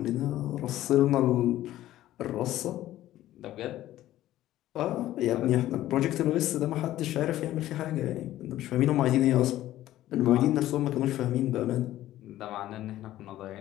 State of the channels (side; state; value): right; quieter; 14.2 dB